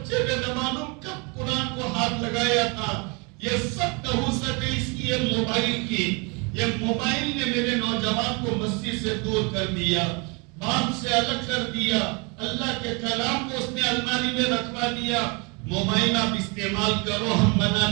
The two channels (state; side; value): quieter; left; 30.9 dB